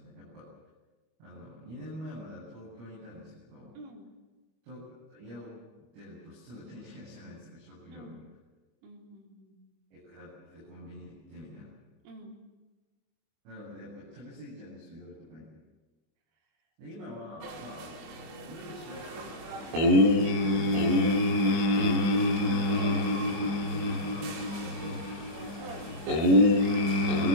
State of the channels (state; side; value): late; left; 25 ms